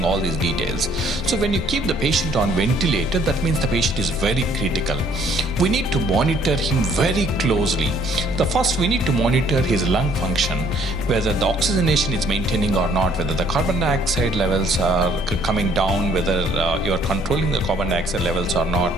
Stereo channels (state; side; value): normal; both; correlation 0.62